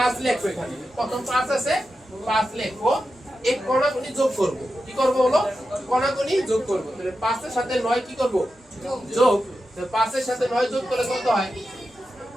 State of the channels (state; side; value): normal; both; correlation 0.90